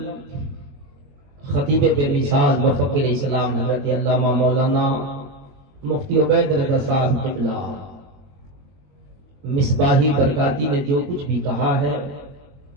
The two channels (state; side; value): late; left; 21 ms